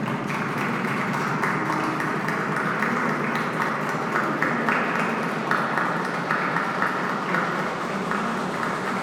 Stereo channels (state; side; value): identical; both; correlation 1.00